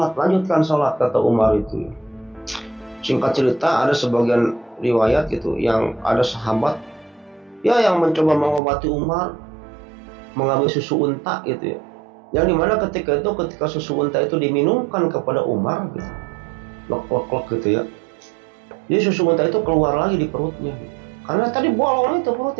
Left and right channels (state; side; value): drops out; left; at 8.6 s